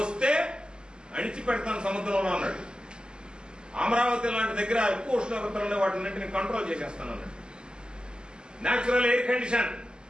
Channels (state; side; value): late; left; 0.048 ms